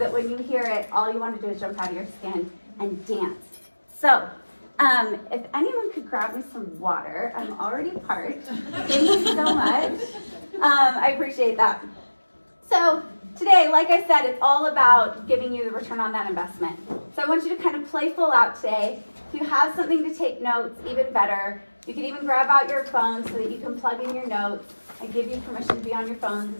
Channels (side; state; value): both; inverted; correlation -1.00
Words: when you hear it, all you want to do is jump out of your skin and dance. So, if anyone could grab me some water, I'm already parched. Thank you so much. I appreciate that. So today, like I said, it's all about giving you the return on that investment. So I want you to kind of play full out today. If you have something to take notes, even better. You can even grab out your phone so that you can plug in your notes. I give you permission to be on your phones